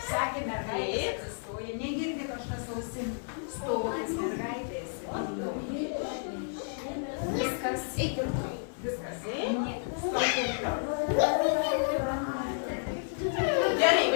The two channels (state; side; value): silent; right; digital silence